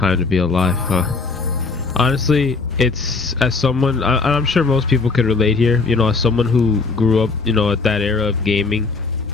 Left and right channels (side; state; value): right; quieter; 4.2 dB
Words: to be alive, huh? Honestly, it's as someone, I'm sure most people could relate here, you know, as someone who grew up, you know, at that era of gaming,